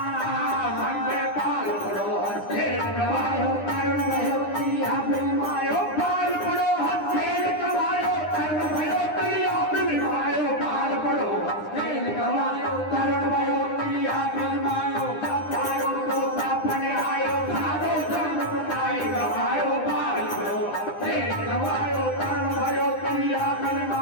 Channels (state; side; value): late; right; 9.9 ms